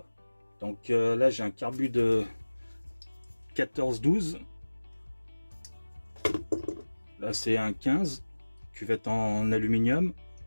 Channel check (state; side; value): inverted; both; correlation -1.00